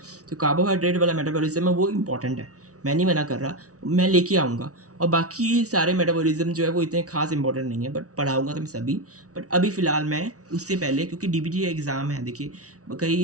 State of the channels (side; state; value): left; late; 0.67 ms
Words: तो कार्बोहाइड्रेट वाला मेटाबॉलिज्म है वो इम्पॉर्टेंट है, मैं नहीं मना कर रहा, मैं लेके आऊँगा। और बाकी सारे मेटाबॉलिज्म जो है वो इतने खास इंपॉर्टेंट नहीं है, बट पढ़ाऊँगा तो मैं सभी, बट अभी फ़िलहाल मैं उससे पहले, क्योंकि DBT एग्ज़ाम है, देखिए